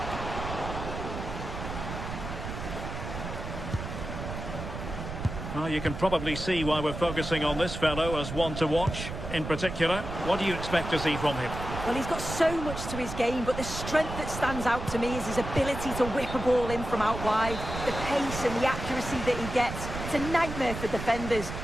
Well, you can probably see why we're focusing on this fellow as one to watch. In particular, what do you expect to see from him? Well, he's got so much to his game, but the strength that stands out to me is his ability to whip a ball in from out wide. The pace and the accuracy that he gets. It's a nightmare for defenders,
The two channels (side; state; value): right; noise; rumble, 7 dB below the sound